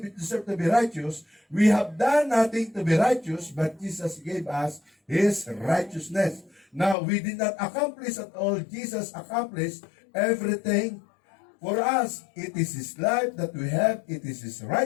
to be righteous. We have done nothing to be righteous, but Jesus gave us His righteousness. Now, we did not accomplish at all. Jesus accomplished everything for us. It is His life that we have. It is His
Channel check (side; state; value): right; drops out; at 7.0 s